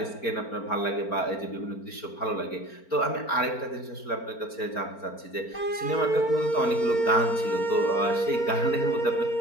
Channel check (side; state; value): right; late; 4.4 ms